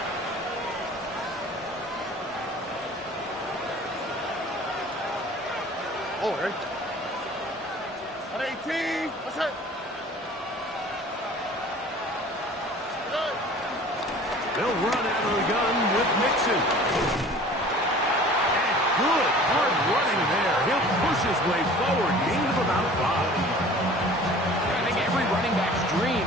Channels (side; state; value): both; normal; correlation 0.46